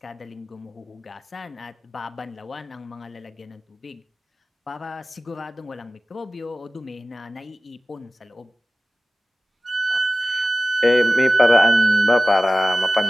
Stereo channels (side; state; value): both; normal; correlation 0.95